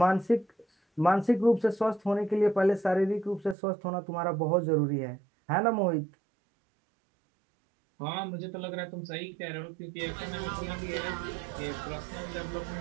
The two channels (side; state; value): left; drops out; at 3.6 s